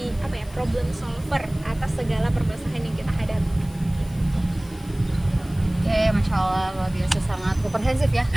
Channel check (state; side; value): noise; left; hiss, 24 dB below the sound